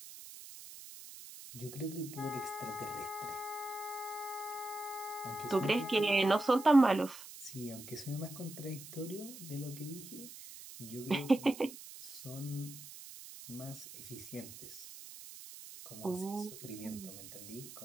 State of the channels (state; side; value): noise; right; hiss, 14 dB below the sound